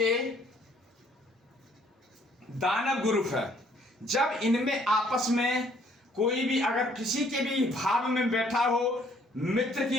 दानव ग्रुप है। जब इनमें आपस में कोई भी अगर किसी के भी भाव में बैठा हो, मित्र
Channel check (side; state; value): both; normal; correlation 0.62